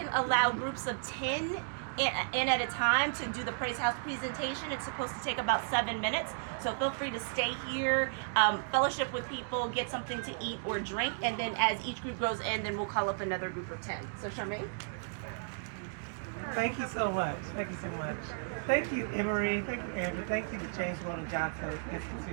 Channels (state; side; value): silent; left; digital silence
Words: allow groups of 10 in at a time to do the Praise House presentation. It's supposed to take about 7 minutes, so feel free to stay here, fellowship with people, get something to eat or drink, and then as each group goes in, then we'll call up another group of 10. So Charmaine? Thank you so much. Thank you so much. Thank you, Emory. Thank you, Andrew. Thank you to James Weldon Johnson